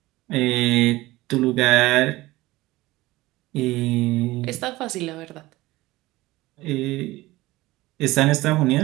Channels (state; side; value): quieter; left; 18.9 dB